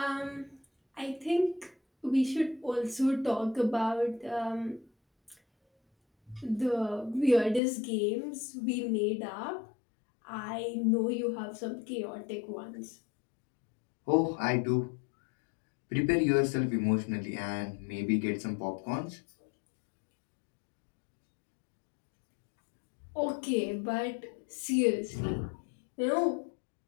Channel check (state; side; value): drops out; right; at 7.6 s